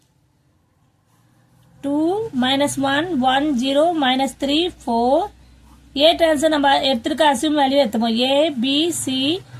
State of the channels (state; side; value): identical; both; correlation 1.00